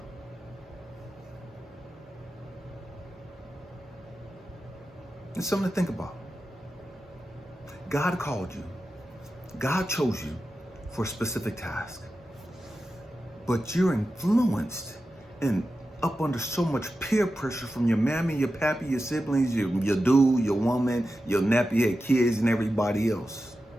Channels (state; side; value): normal; both; correlation 0.92